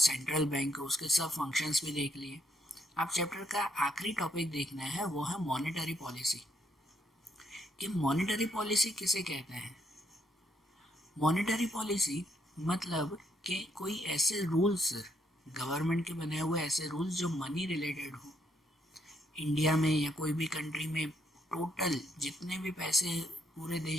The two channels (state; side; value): normal; both; correlation 0.73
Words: बैंक उसके सब फंक्शंस भी देख लिए। अब चैप्टर का आखिरी टॉपिक देखना है, वो है मॉनेटरी पॉलिसी। कि मॉनेटरी पॉलिसी किसे कहते हैं? मॉनेटरी पॉलिसी मतलब कि कोई ऐसे रूल्स, गवर्नमेंट के बने हुए ऐसे रूल्स जो मनी रिलेटेड हो। इंडिया में या कोई भी कंट्री में टोटल जितने भी पैसे पूरे